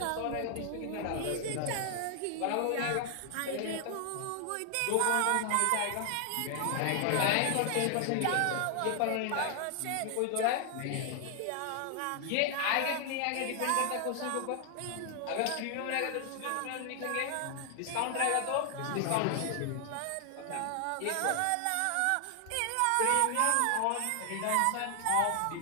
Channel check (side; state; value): both; different; correlation 0.00